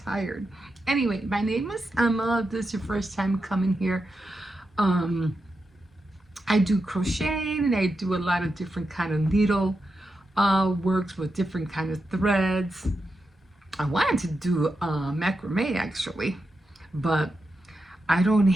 tired. Anyway, my name is Emma. If this is your first time coming here. Um, I do crocheting and I do a lot of different kind of needle works with different kind of threads. I wanted to do macrame actually, but I don't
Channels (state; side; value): normal; both; correlation 0.88